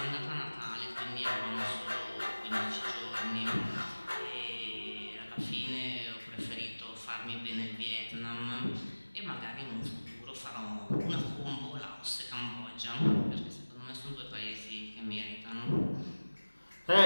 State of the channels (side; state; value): both; inverted; correlation -1.00